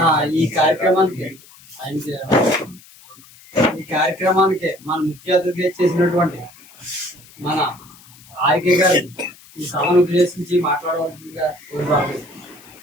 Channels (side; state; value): left; noise; hiss, 24 dB below the sound